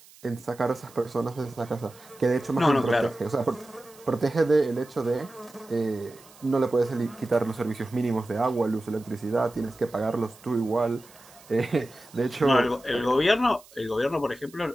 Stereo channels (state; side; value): noise; right; hiss, 24 dB below the sound